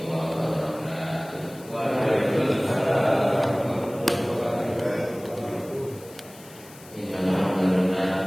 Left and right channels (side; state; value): left; noise; hiss, 21 dB below the sound